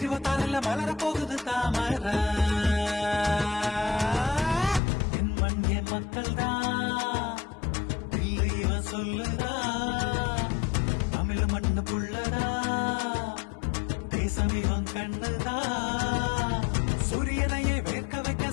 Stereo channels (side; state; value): right; drops out; at 4.8 s